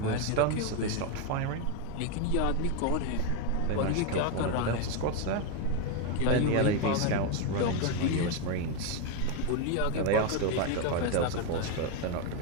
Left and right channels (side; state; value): both; different; correlation 0.02